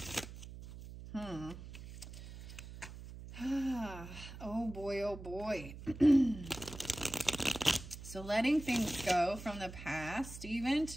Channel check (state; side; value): noise; right; hum, 13 dB below the sound